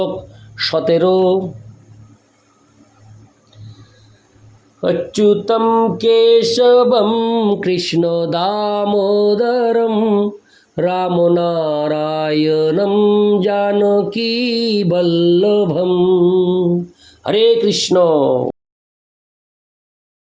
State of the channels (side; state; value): both; identical; correlation 1.00